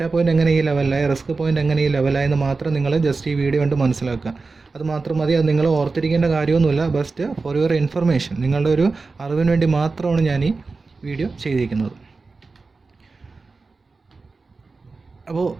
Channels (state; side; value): quieter; left; 4.1 dB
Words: പോയിൻ്റ് എങ്ങനെ ഈ ലെവലിലായി, റിസ്ക് പോയിൻ്റ് എങ്ങനെ ഈ ലെവലായി എന്ന് മാത്രം നിങ്ങൾ ജസ്റ്റ് ഈ വീഡിയോ കൊണ്ട് മനസ്സിലാക്കുക. അത് മാത്രം മതി. അത് നിങ്ങൾ ഓർത്തിരിക്കേണ്ട കാര്യമൊന്നുമില്ല. ബസ്റ്റ് ഫോർ യുവർ ഇൻഫർമേഷൻ, നിങ്ങളുടെ ഒരു അറിവിന് വേണ്ടി മാത്രമാണ് ഞാൻ ഈ വീഡിയോ ചെയ്തിരിക്കുന്നത്. അപ്പോൾ